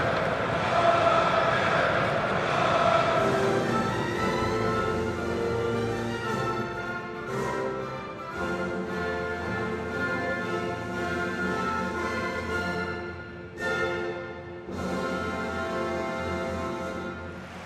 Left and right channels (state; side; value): identical; both; correlation 1.00